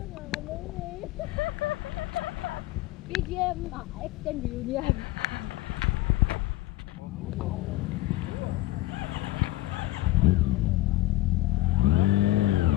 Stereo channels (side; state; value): right; quieter; 17.7 dB